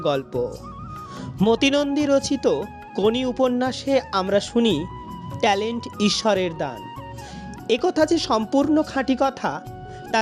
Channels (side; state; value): both; identical; correlation 1.00